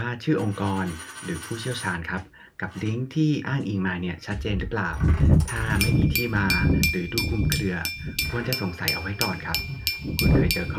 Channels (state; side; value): identical; both; correlation 1.00